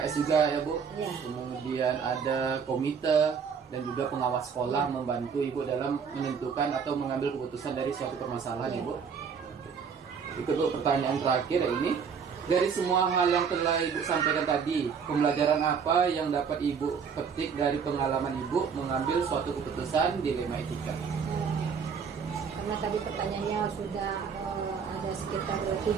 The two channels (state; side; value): quieter; left; 6.4 dB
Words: juga ya Bu. Iya. Kemudian ada komite dan juga pengawas sekolah membantu Ibu dalam menentukan atau mengambil keputusan dari suatu permasalahan Iya. Ibu. Itu Bu, pertanyaan terakhir ini. Dari semua hal yang telah Ibu sampaikan tadi, pembelajaran apa yang dapat Ibu petik dari pengalaman Ibu mengambil suatu keputusan dilema etika? Karena tadi pertanyaannya sudah ada sekitar